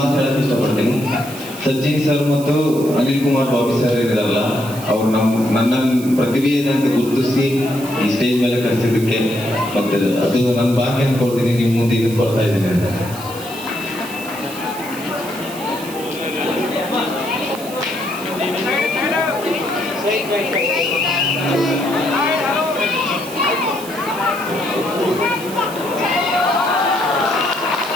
ಹೇಳಕ್ಕೆ ಇಷ್ಟಪಡ್ತೀನಿ. ಸಜ್ಜಿನ್ ಸರ್ ಮತ್ತು ಅನಿಲ್ ಕುಮಾರ್ ಬಾಬಿ ಸರ್ ಇರಲ್ಲ, ಅವ್ರು ನನ್ನ ಪ್ರತಿಭೆ ಏನಂತ ಗುರುತಿಸಿ ಈ ಸ್ಟೇಜ್ ಮೇಲೆ ಕರೆಸಿದ್ದಕ್ಕೆ ಮತ್ತೆ ಅದು ನನ್ನ ಭಾಗ್ಯ ಅನ್ಕೊಳ್ತೀನಿ. ನಿಮ್ಮ ಮುಂದೆ ಇದನ್ನು ಕೊಡ್ತಾ ಇದ್ದೀನಿ ಅಂತ.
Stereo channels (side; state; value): right; noise; hiss, 14 dB below the sound